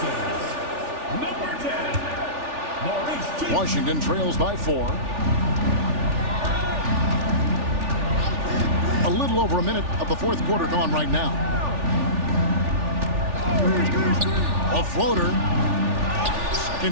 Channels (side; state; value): left; late; 3.4 ms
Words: Number 10. Washington trails by 4. A little over a minute of the fourth quarter gone right now. A floater.